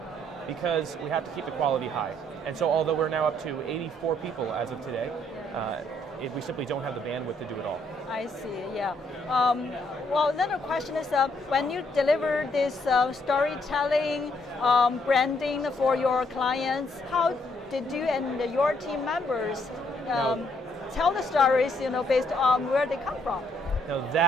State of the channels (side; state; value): both; normal; correlation 0.71